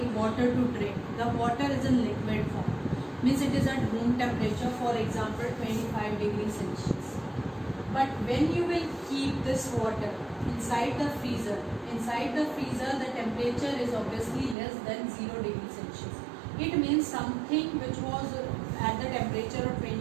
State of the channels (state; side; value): drops out; left; at 14.6 s